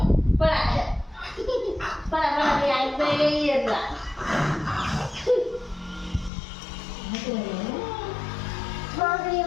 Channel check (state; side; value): drops out; right; at 6.3 s